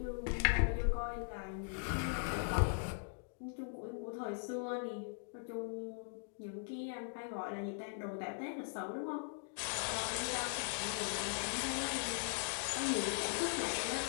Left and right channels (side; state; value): right; silent; digital silence